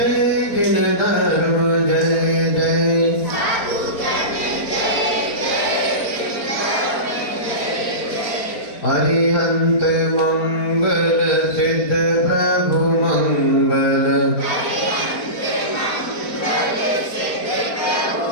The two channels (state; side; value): late; right; 4.4 ms